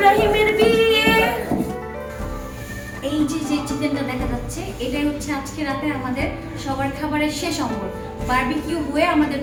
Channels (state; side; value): identical; both; correlation 1.00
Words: বিয়ে। এই যে চিকেনটা দেখা যাচ্ছে এটাই হচ্ছে আজকে রাতে আমাদের সবার খাবারের শেষ অঙ্গ। বারবিকিউ হয়ে আমাদের